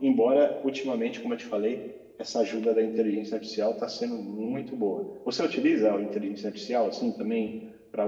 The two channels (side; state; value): both; identical; correlation 1.00